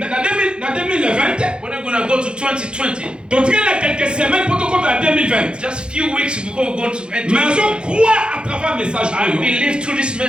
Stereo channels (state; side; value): late; left; 0.052 ms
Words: When we're going to go to 2020. Donc il y a quelques semaines pour te compter la 2020. Just few weeks before we go to enter. Mais je crois à travers le message. I believe through this